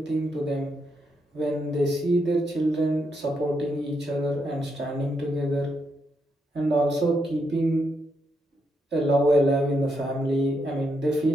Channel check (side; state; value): both; normal; correlation 0.80